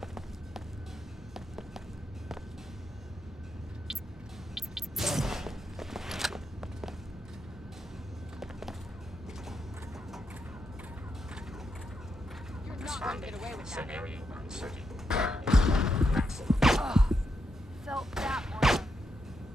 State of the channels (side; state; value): both; normal; correlation 0.82